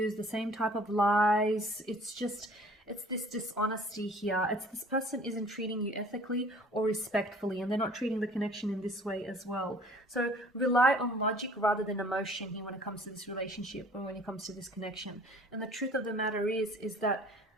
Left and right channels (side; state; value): both; normal; correlation 0.51